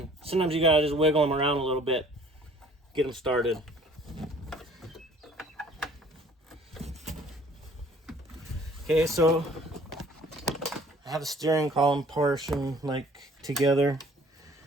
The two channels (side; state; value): both; normal; correlation 0.54